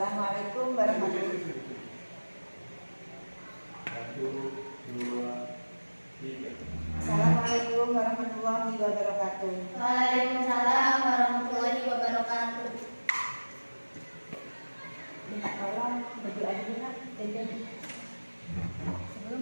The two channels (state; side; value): inverted; both; correlation -1.00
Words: warahmatullahi wabarakatuh. Satu, dua, tiga. Assalamualaikum warahmatullahi wabarakatuh. Waalaikumsalam warahmatullahi wabarakatuh. Minta tolong berdoa dulu nak. Sebelum